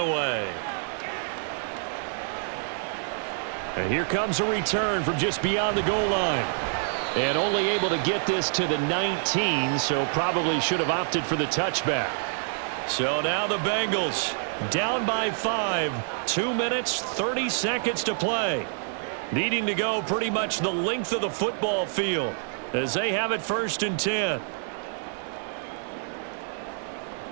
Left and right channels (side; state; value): left; silent; 60 dB below the other